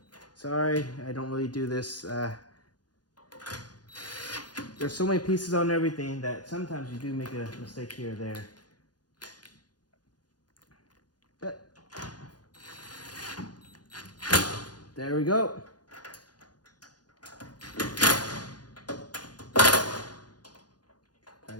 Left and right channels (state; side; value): late; right; 0.69 ms